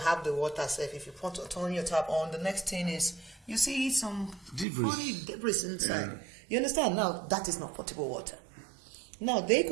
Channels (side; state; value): left; drops out; at 4.7 s